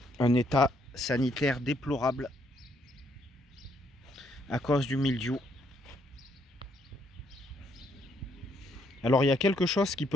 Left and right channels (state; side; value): normal; both; correlation 0.71